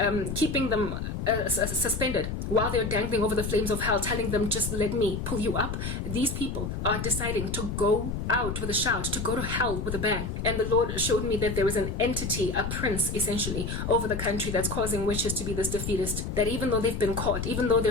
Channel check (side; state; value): left; noise; rumble, 4 dB below the sound